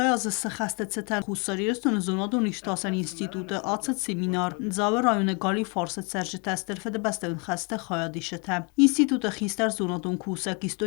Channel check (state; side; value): quieter; right; 33.2 dB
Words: ze xasteceten xusariyestun zonadun iştasan institute atsat seminar zave rayone gali farset serjete strfede besteun xaste xayadişete. İnstitute xistar zonadun kusak